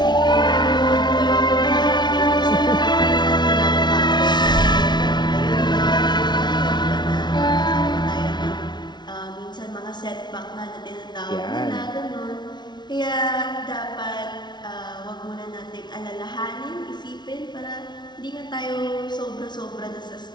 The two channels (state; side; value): late; right; 0.21 ms